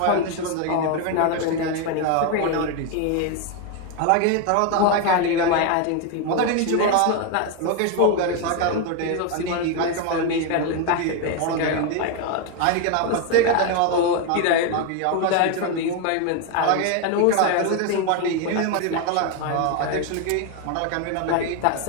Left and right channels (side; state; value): both; different; correlation 0.01